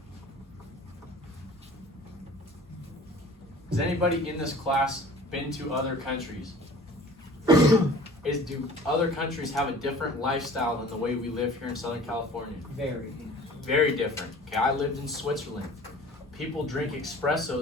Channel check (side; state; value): both; normal; correlation 0.46